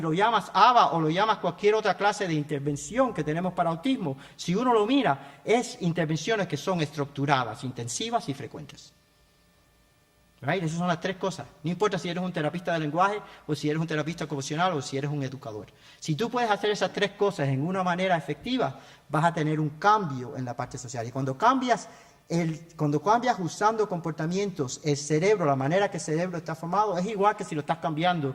llamas ABA o lo llamas cualquier otra clase de intervención que tenemos para autismo, si uno lo mira, es intervenciones que son estructuradas, intensivas y frecuentes. Right? Esas son las 3 cosas. No importa si eres un terapista de lenguaje o si eres un terapista ocupacional o si eres un educador. Si tú puedes hacer esas 3 cosas en una manera efectiva, vas a tener un cambio en la parte social. Y cuando cambias usando comportamientos, el cerebro, la manera que el cerebro está formado, es igual que si lo estás cambiando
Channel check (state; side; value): identical; both; correlation 1.00